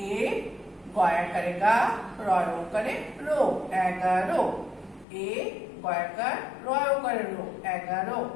এ গয়াকারে গা রয় ওকারে রো 11। এ গয়াকার রয় ওকারে রো 11।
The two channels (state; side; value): drops out; right; at 5.1 s